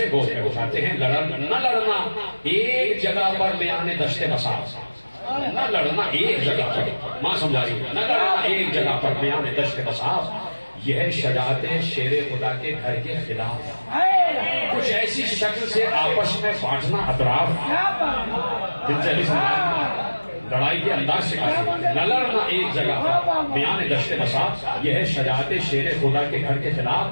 گود میں اٹھاتے ہیں. نہ لڑنا ایک جگہ پر میانے دشت بساس، نہ لڑنا ایک جگہ پر، ماں سمجھا رہی ہے، نہ لڑنا ایک جگہ پر میانے دشت بساس. یہ شجاعت شیر خدا کے گھر کے خلاف، کچھ ایسی شکل سے آپس میں بانٹنا اطراف. دل سے لڑائی کے انداز سے نہ لڑنا ایک جگہ پر میان دشت بساس. یہ ہے شجاعت شیر خدا کے گھر کے خلاف،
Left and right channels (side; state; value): both; inverted; correlation -1.00